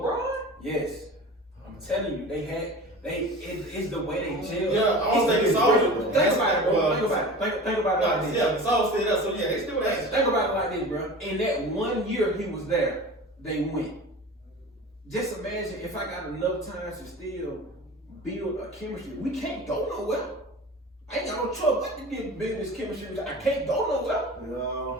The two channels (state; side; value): normal; both; correlation 0.36